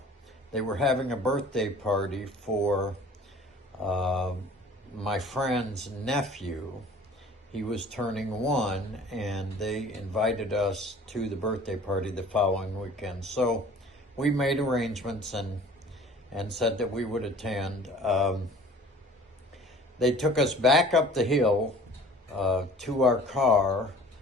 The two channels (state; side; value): normal; both; correlation 0.48